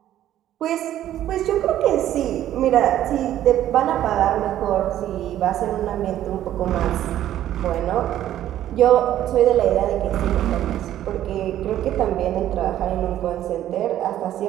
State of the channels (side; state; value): left; quieter; 12.3 dB